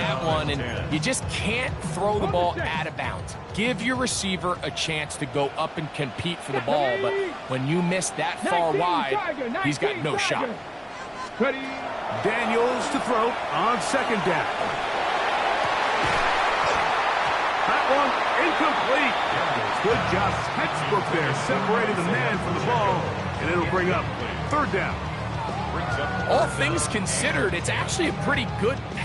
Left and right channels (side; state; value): both; identical; correlation 1.00